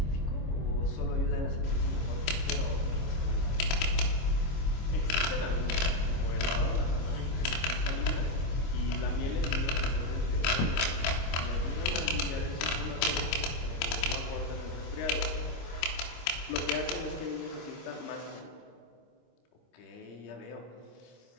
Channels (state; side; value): late; right; 25 ms